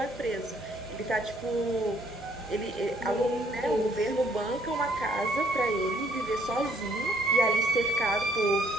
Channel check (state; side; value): normal; both; correlation 0.65